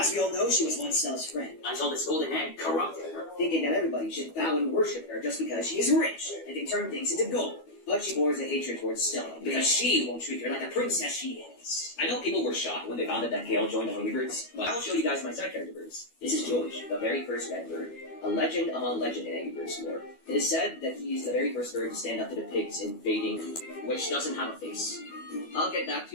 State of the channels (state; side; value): late; right; 12 ms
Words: we all know, she was once Stella's friend, until this golden egg corrupted her, thinking that everybody should bow and worship her just because she is rich and can turn things into gold. But she bores a hatred towards Stella, because she won't treat her like the princess she is. I know people were shocked when they found out that Gale joined the Hungry Birds, but I'll show you guys my side character birds. This is George, the very first red bird, a legend among legend in Angry Birds lore. It is said that he is the very first bird to stand up to the pigs invading, which doesn't have a face. I'll get back